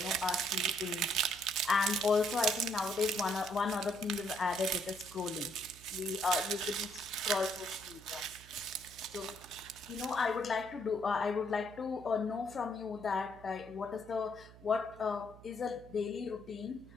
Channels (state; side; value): noise; right; hum, 20 dB below the sound